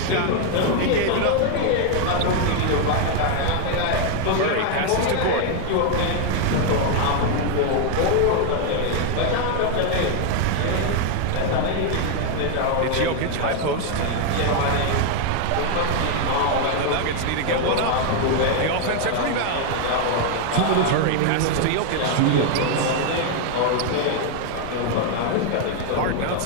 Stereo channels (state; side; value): different; both; correlation 0.00